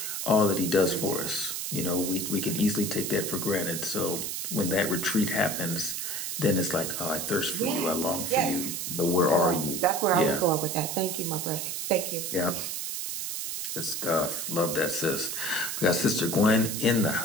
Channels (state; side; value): noise; right; hiss, 3 dB below the sound